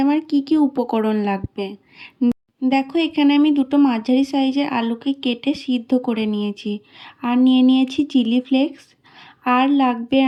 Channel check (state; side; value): identical; both; correlation 1.00